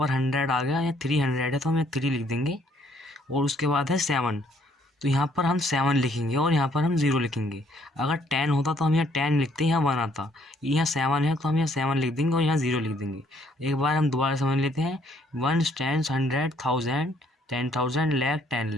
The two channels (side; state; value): both; normal; correlation 0.66